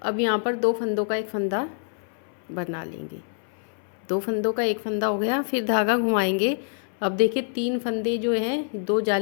अब यहाँ पर 2 फंदों का एक फंदा बना लेंगे, 2 फंदों का एक फंदा हो गया, फिर धागा घुमाएंगे। अब देखिए 3 फंदे जो हैं, 2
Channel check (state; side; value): silent; right; 61 dB below the other